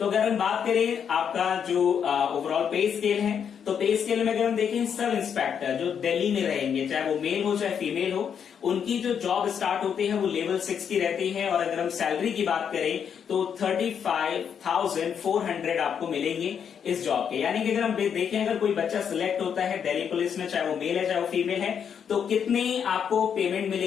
अगर हम बात करें आपका जो ओवरऑल पे स्केल है, तो पे स्केल में अगर हम देखें सब इंस्पेक्टर जो दिल्ली में रहेंगे, चाहे वो मेल हो चाहे फीमेल हो, उनकी जो जॉब स्टार्ट होती है वो लेवल 6 की रहती है। और अगर हम सैलरी की बात करें तो 35,400 आपको मिलेंगे इस जॉब के। यानी कि अगर हम देखें अगर कोई बच्चा सिलेक्ट होता है दिल्ली पुलिस में, चाहे वो मेल है चाहे वो फीमेल है, तो कितनी आपको पेमेंट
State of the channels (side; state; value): right; quieter; 7.7 dB